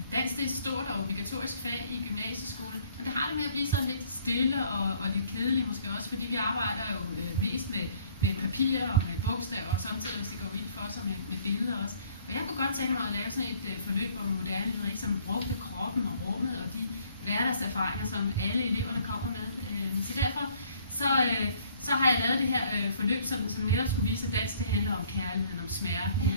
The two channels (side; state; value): both; inverted; correlation -0.60